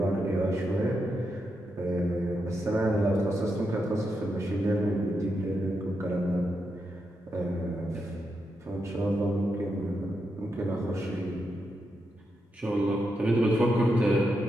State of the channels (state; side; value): normal; both; correlation 0.84